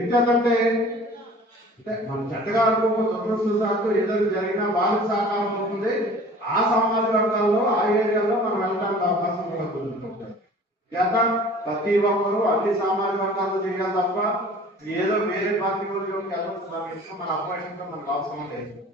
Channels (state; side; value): normal; both; correlation 0.46